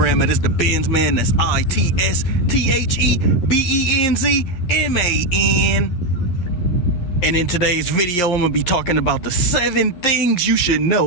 That is the Benz Man. That's ITSTHEBENZMAN. And in today's video, I'm gonna be talking about the 7 things you should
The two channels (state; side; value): late; right; 11 ms